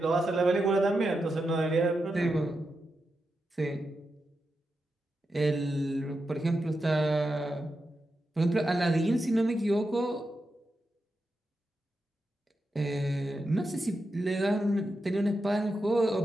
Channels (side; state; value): both; normal; correlation 0.88